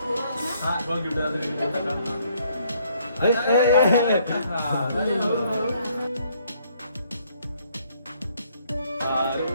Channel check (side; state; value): both; inverted; correlation -0.67